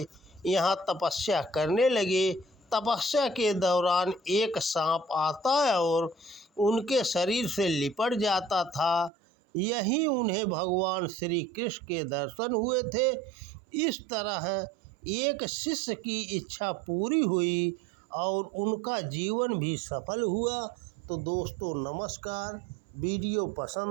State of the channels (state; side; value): drops out; left; at 9.1 s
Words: यहाँ तपस्या करने लगे। तपस्या के दौरान एक सांप आता है और उनके शरीर से लिपट जाता था। यहीं उन्हें भगवान श्री कृष्ण के दर्शन हुए थे। इस तरह एक शिष्य की इच्छा पूरी हुई और उनका जीवन भी सफल हुआ। तो दोस्तों नमस्कार, वीडियो